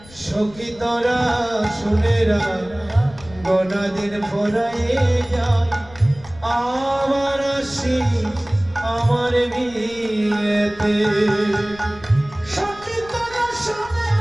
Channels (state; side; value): noise; left; rumble, 21 dB below the sound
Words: সখী তোরা শুনেরা গোনা দিন ফোরাইয়ে যায় আবার আসি আমার বিয়েতে। সখী তোরা